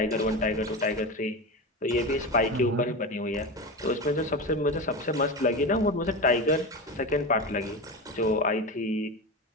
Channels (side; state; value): both; normal; correlation 0.22